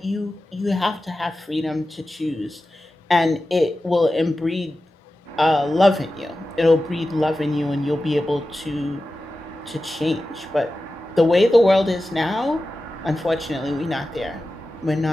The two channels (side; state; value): both; normal; correlation 0.94